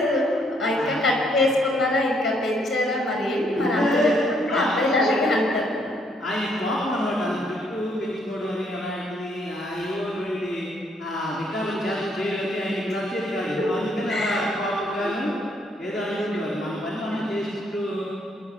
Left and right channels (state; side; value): normal; both; correlation 0.70